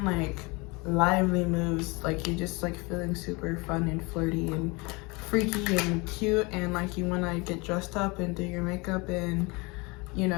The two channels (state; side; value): quieter; right; 26.7 dB